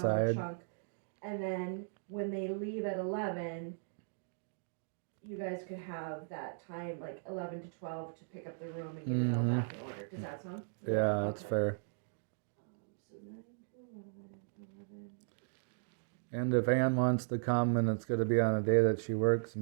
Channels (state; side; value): silent; left; digital silence